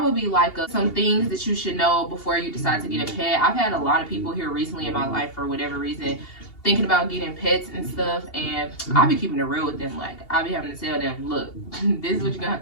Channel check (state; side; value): late; right; 2.8 ms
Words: be like some things that you should know before you decide to get a pet. I've had a lot of people here recently in my life, for whatever reason, thinking about getting pets and stuff, and I be keeping it real with them. Like, I be having to tell them, look, this is what you're gonna